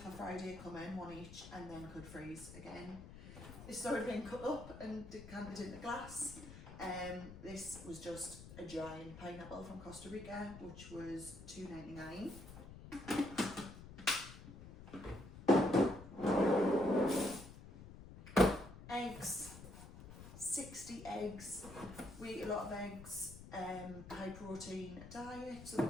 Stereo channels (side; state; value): left; noise; rumble, 14 dB below the sound